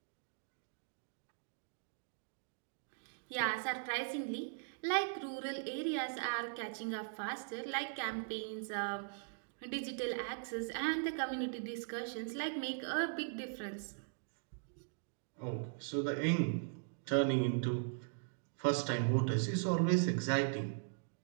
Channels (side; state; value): left; silent; digital silence